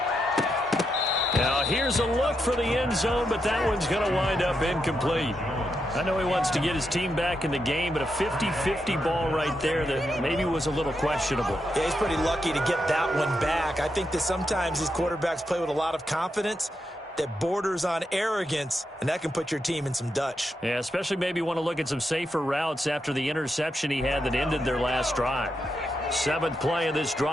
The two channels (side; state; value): both; normal; correlation 0.84